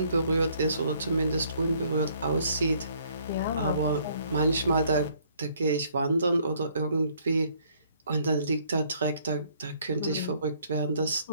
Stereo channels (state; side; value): inverted; both; correlation -0.64